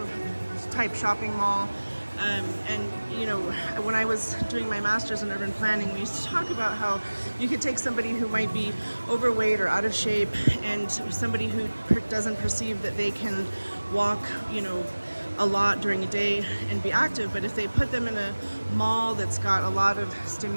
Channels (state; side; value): inverted; both; correlation -1.00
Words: type shopping mall. And, you know, when I was doing my master's in urban planning, we used to talk about how you could take somebody who might be overweight or out of shape and somebody who doesn't perceive that they can walk, you know, a lot during a day and be active, but if they put them in a mall that's got a lot of